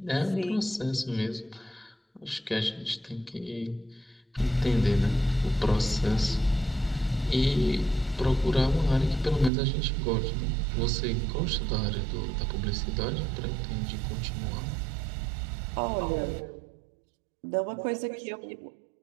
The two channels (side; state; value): left; drops out; at 9.5 s